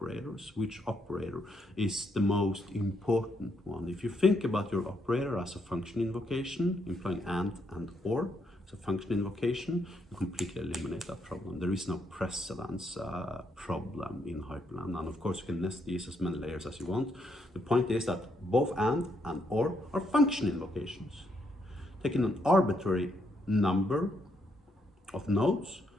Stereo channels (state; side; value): normal; both; correlation 0.76